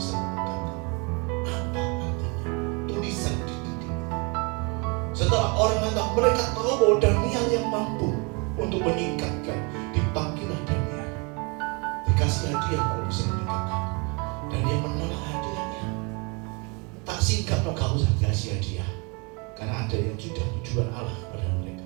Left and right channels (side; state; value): left; quieter; 31.3 dB